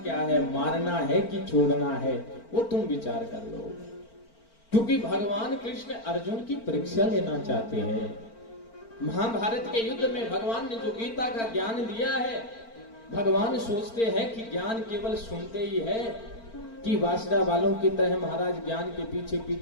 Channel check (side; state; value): right; late; 4.4 ms